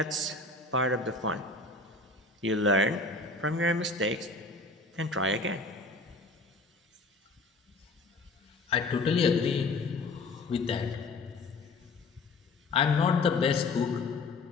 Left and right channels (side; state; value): right; quieter; 3.3 dB